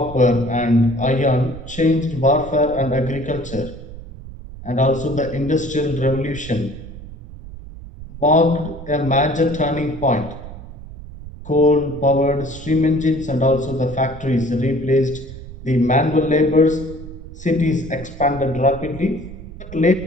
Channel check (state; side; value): noise; right; rumble, 14 dB below the sound